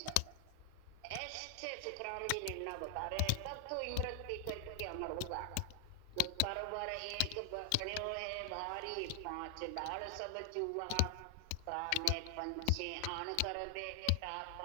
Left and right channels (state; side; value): different; both; correlation 0.00